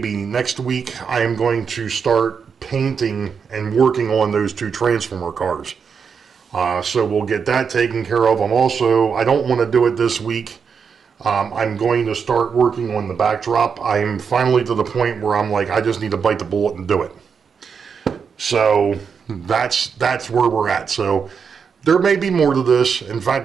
next week. I am going to start painting and working on those two Transformer cars. So we'll get that taken care of. I don't want to do it this week. I'm going to start working on the backdrop. I'm finally to the point where I'm like, I just need to bite the bullet and do it. So that's where we're at. So there may be more to this. In fact,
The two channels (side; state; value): left; quieter; 6.3 dB